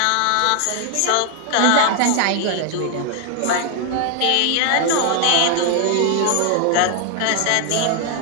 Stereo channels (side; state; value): both; different; correlation 0.00